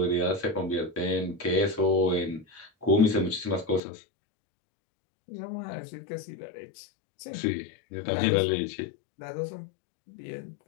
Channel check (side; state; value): right; drops out; at 3.8 s